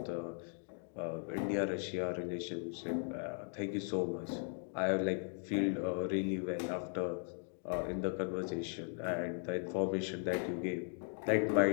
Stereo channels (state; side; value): silent; right; 52 dB below the other